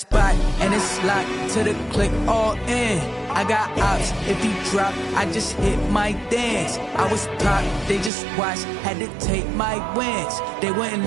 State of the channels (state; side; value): drops out; left; at 8.1 s